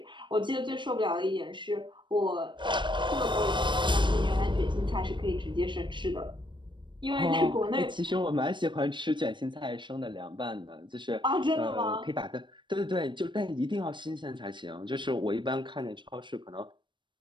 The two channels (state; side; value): late; left; 0.23 ms